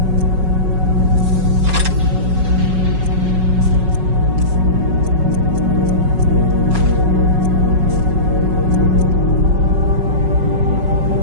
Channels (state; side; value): late; left; 5.4 ms